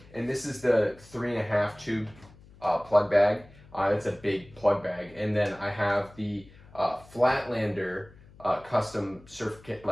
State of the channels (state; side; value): noise; left; hum, 23 dB below the sound